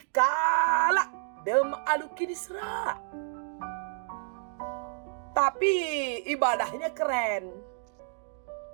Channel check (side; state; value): left; silent; 58 dB below the other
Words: dem aluki disra. Tapi ibadahnya keren.